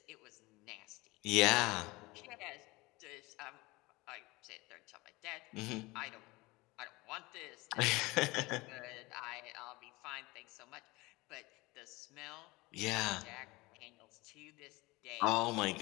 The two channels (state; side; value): quieter; right; 22.4 dB